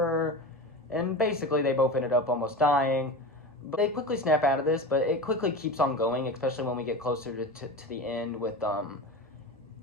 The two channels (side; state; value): both; normal; correlation 0.28